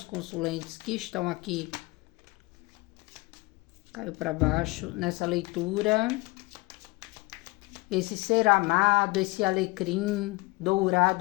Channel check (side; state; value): right; quieter; 23.7 dB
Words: consulentes que estão aqui. Caiu para baixo nessa leitura. Esse ser amado, esse alecrim